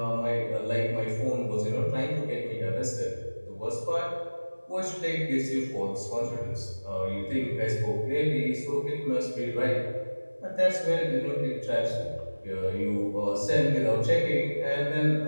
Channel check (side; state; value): both; inverted; correlation -1.00